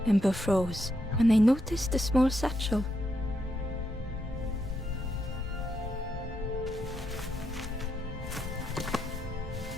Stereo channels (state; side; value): normal; both; correlation 0.81